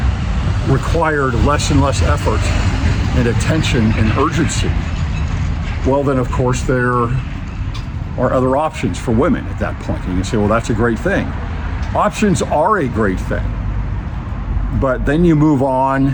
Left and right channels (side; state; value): both; identical; correlation 1.00